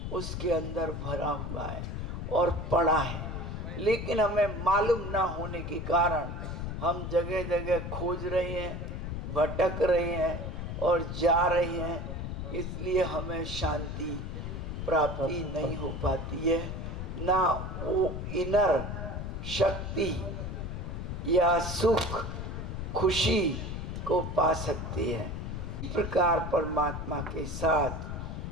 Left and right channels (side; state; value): left; noise; rumble, 5 dB below the sound